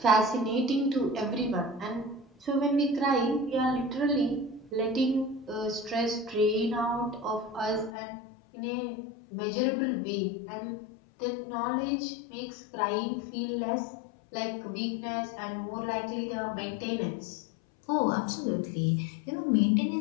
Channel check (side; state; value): right; drops out; at 7.9 s